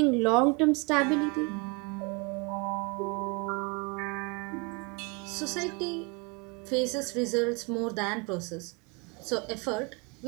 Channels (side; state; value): left; quieter; 29.8 dB